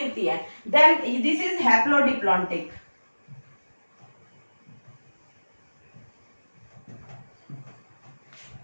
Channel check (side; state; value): both; inverted; correlation -1.00